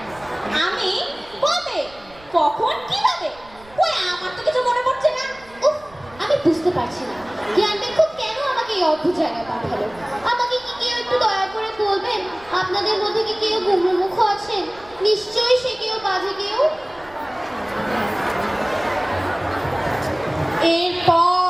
আমি? কবে? কখন? কিভাবে? ওই আমার তো কিছু মনে পড়ছে না। উফ, আমি বুঝতে পারছি না জ্ঞান দেখুন কেন আমাকে এই অদ্ভুত জায়গায় পাঠালো। আমাকে কি কেউ একটু দয়া করে বলবেন আপনাদের মধ্যে কি কেউ গুমড়োমুখ আছেন? নিশ্চয়ই সে কেউ বাজে কেউ।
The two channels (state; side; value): noise; right; rumble, 24 dB below the sound